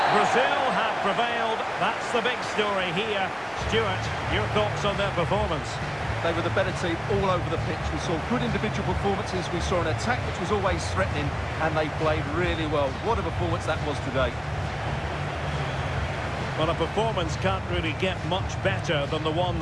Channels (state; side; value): identical; both; correlation 1.00